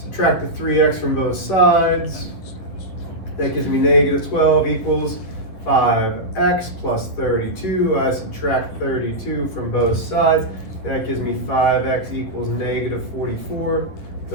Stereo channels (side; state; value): right; late; 11 ms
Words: the 3x from both sides. That gives me negative 12 equals 5x plus 32. I subtract 32 from both sides. That gives me 5x equals negative 44.